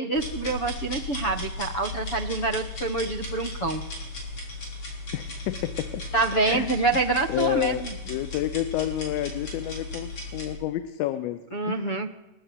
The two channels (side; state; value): right; late; 7.0 ms